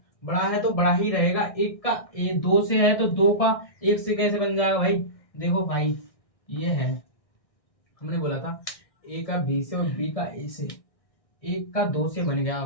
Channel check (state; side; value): late; right; 1.6 ms